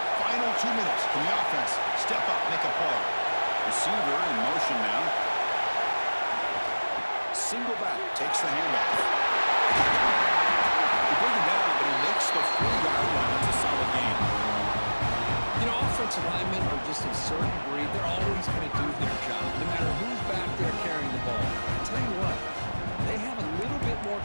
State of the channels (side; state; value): both; inverted; correlation -1.00